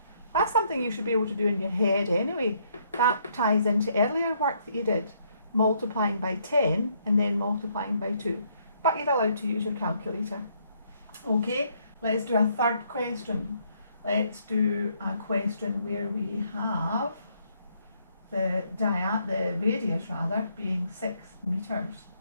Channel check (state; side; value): inverted; both; correlation -0.70